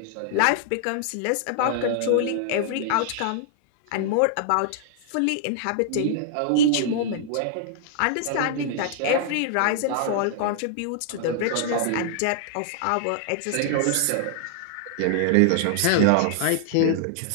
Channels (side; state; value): both; different; correlation -0.01